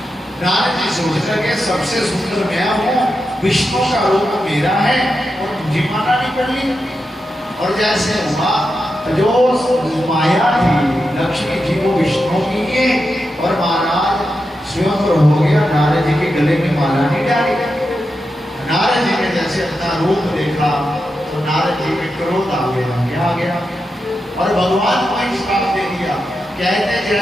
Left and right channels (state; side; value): normal; both; correlation 0.88